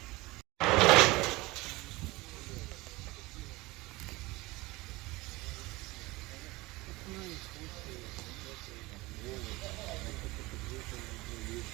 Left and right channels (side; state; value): left; quieter; 21.4 dB